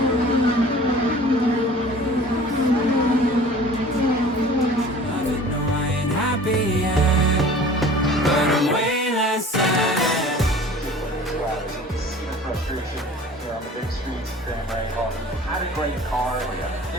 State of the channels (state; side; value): normal; both; correlation 0.45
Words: On the big streets of Grand Rapids. Had a great car.